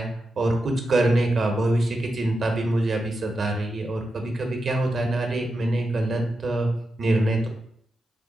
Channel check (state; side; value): normal; both; correlation 0.89